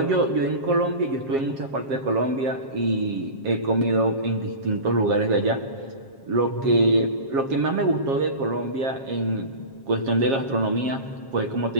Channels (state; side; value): late; left; 7.4 ms